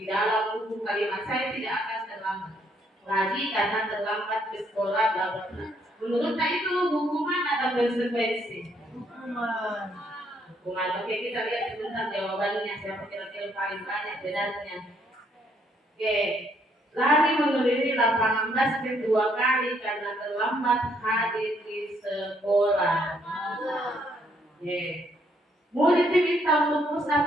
dalam buku kalimat saya tidak akan terlambat lagi karena terlambat ke sekolah bla bla bla. Menurut itu hukuman atau konsekuensi? Hukuman. Oke, kita lihat sebentar jawabannya siapa kira-kira paling banyak benarnya. Oke, lari mengelilingi lapangan basket 2 kali karena terlambat hadir di sekolah. Oke. Murid diminta untuk push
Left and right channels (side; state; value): both; normal; correlation 0.70